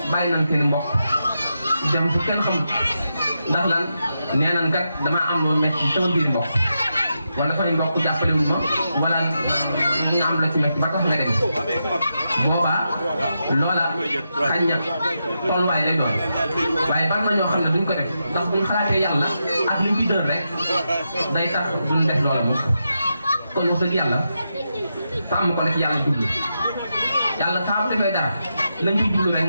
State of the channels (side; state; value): both; inverted; correlation -0.86